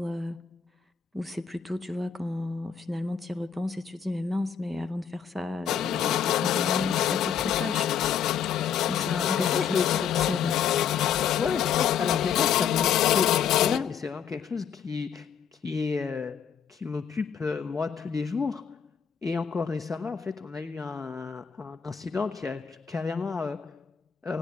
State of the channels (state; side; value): quieter; right; 7.7 dB